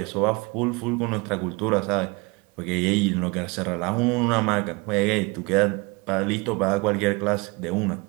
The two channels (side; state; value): left; quieter; 27.0 dB